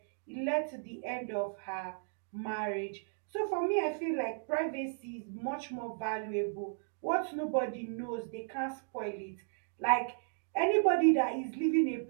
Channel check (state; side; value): silent; left; digital silence